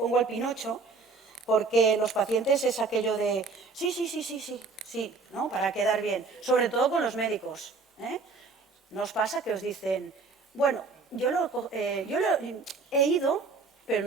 al Pinocho, porque los pacientes es aquello de sí, ¿no? Para quedar bien, sobre todo con los médicos. ¿No os pasa que os dicen, bueno, yo he ido, pero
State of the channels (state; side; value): quieter; left; 4.2 dB